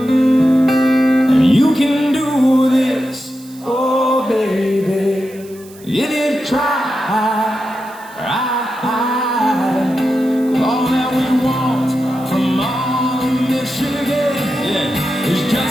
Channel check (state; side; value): noise; right; hiss, 23 dB below the sound